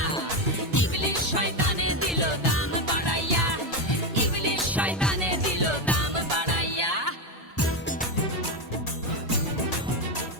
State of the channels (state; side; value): normal; both; correlation 0.11